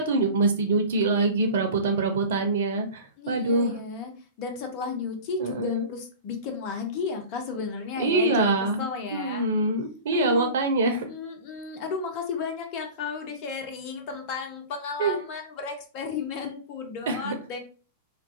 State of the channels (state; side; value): inverted; both; correlation -0.35